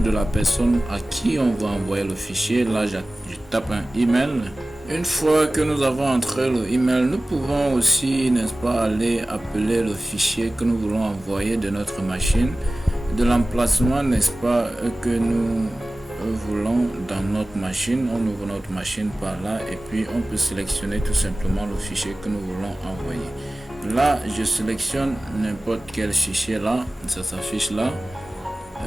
la personne à qui on va envoyer le fichier. Là je tape un email. Une fois que nous avons entré le email, nous pouvons aussi n'est-ce pas aller appeler le fichier que nous voulons envoyer de notre machine, de l'emplacement n'est-ce pas que nous voulons dans notre machine. On ouvre notre machine par là et puis on peut sélectionner tout simplement le fichier que nous voulons envoyer. Là je sélectionne n'importe quel fichier, là ça s'affiche là,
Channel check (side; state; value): both; normal; correlation 0.96